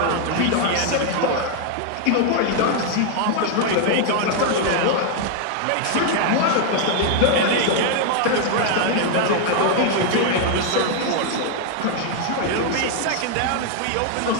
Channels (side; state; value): both; different; correlation 0.00